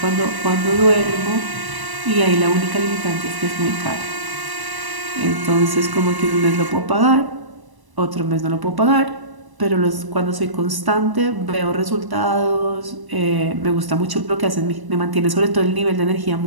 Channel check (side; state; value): left; late; 1.0 ms